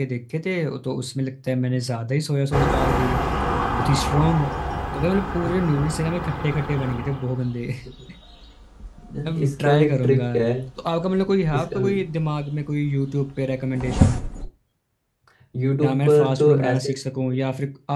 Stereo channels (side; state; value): both; identical; correlation 1.00